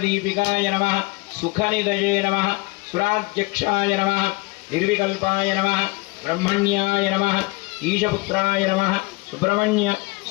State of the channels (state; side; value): quieter; right; 25.0 dB